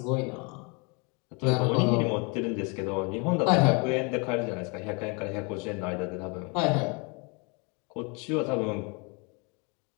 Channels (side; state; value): right; quieter; 32.0 dB